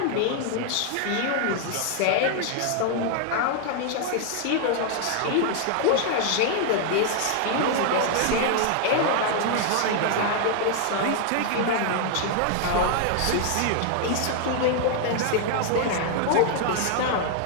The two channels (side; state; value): both; different; correlation 0.00